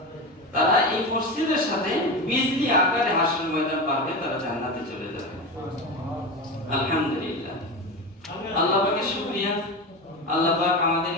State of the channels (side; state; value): both; normal; correlation 0.22